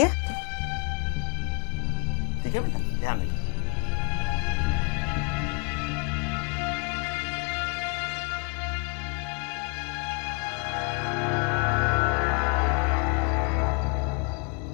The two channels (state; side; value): quieter; right; 35.0 dB